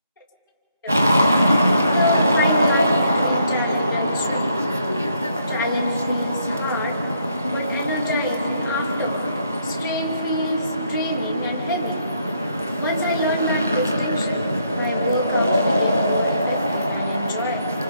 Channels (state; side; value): inverted; both; correlation -0.72